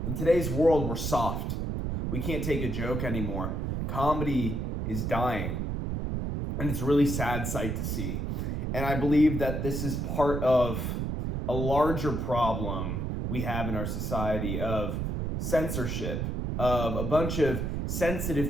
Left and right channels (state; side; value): noise; right; rumble, 2 dB below the sound